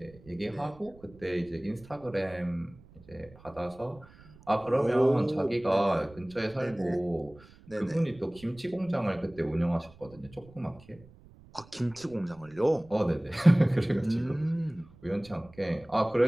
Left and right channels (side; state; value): right; noise; rumble, 23 dB below the sound